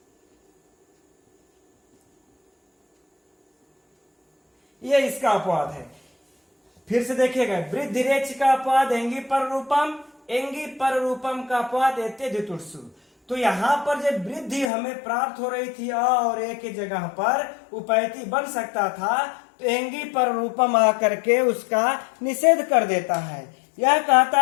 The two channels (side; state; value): right; drops out; at 14.7 s